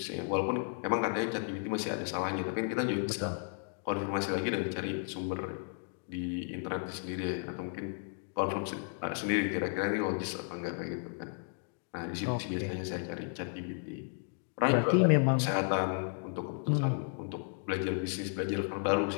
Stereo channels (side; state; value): right; silent; 55 dB below the other